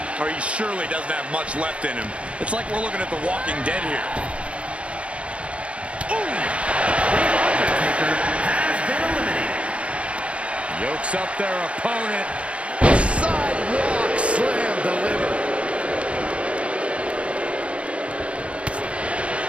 or he surely doesn't have much left in him. It's like we're looking at The Walking Dead here. Undertaker has been eliminated. Yokes up their opponent. Sidewalk slam delivered.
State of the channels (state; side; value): late; left; 0.061 ms